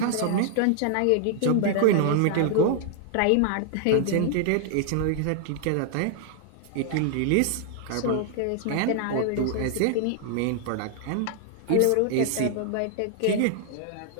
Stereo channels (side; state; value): both; different; correlation 0.00